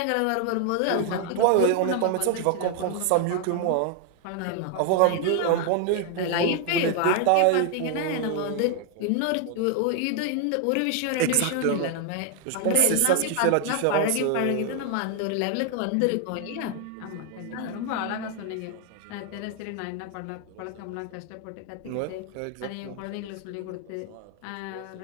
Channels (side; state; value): both; different; correlation 0.01